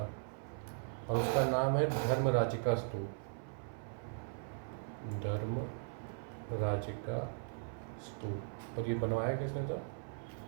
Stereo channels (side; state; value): left; silent; 52 dB below the other